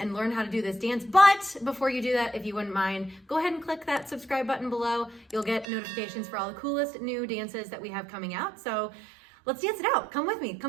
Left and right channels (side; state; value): left; drops out; at 5.7 s